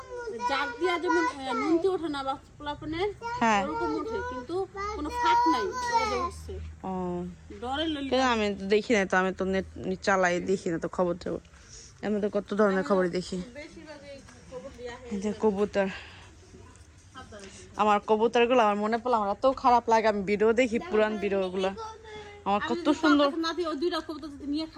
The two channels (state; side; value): identical; both; correlation 1.00